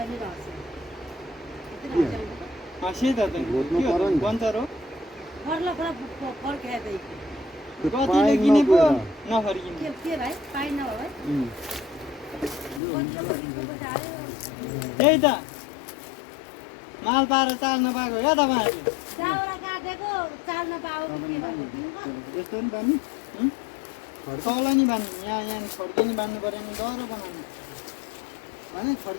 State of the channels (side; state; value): right; drops out; at 12.8 s